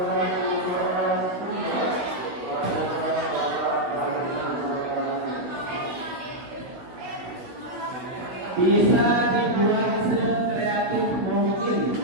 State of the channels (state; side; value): late; left; 16 ms